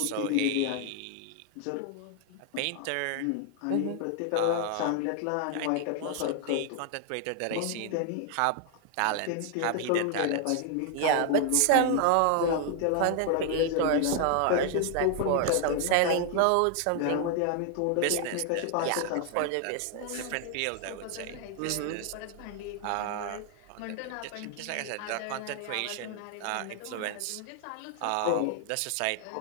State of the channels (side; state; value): both; different; correlation 0.00